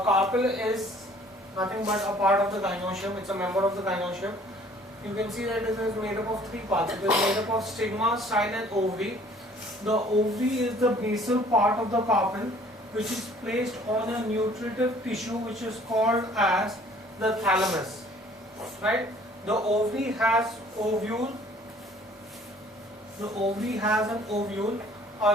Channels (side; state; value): both; normal; correlation 0.55